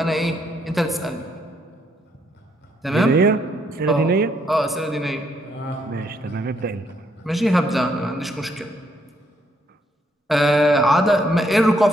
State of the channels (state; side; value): normal; both; correlation 0.72